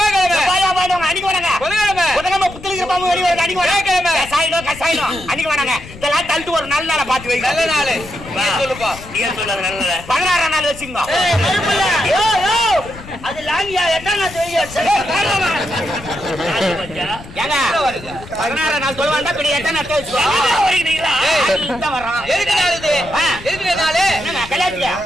அன்னைக்கு வேணாங்க. புதன்கிழமை புதன்கிழமை புத்தலிக்கிற பாம்பு வெளியே வருது அன்னைக்கு வியாழக்கிழமை கசாயினம் அன்னைக்கு வேணாங்க. இதெல்லாம் தள்ளிட்டு ஒரு நல்ல நாளை பார்த்து வைங்க. நல்ல நாள் சொல்லுப்பா. நீங்க சொல்லுங்க நல்ல 16ஆம் நாள் வச்சுங்க. அது லாங்கியா எட்டாம் நாள் ஏங்க 16ஆம் நாள் சொல்ல வேண்டாம். இப்படி எட்டாம் நாள் வச்சுக்கோ. வர்றான் எதுக்கு நாள் இது? எதுக்கு நாள்? கல்யாணத்துக்கு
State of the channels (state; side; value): noise; left; rumble, 16 dB below the sound